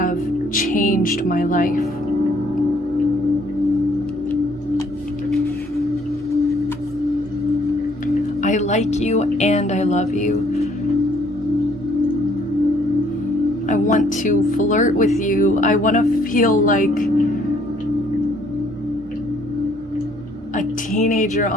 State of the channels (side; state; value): both; normal; correlation 0.63